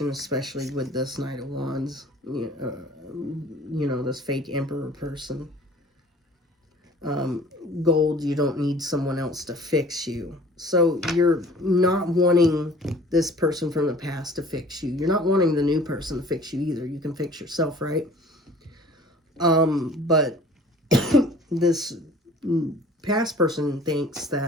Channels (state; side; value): normal; both; correlation 0.49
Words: especially with this Knight of Wands. You know, this fake emperor person. Gold, you don't need someone else to fix you. So you're not wanting this person from the past to fix you. You're not wanting the new person to fix you either. You can fix yourself, right? But this past person thinks